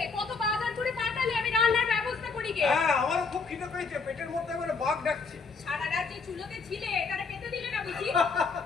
কত বাজার করে পাঠালে, আমি রান্নার ব্যবস্থা করি গে। হ্যাঁ, আমারও খুব খিদে পেয়েছে, পেটের মধ্যে আমার বাঘ ডাকছে। সারা রাত যে চুলোতে ছিলে, তারা খেতে দিলে না বুঝি?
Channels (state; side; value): quieter; right; 4.7 dB